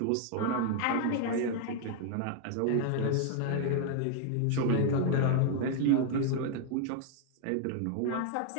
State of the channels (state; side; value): different; both; correlation 0.00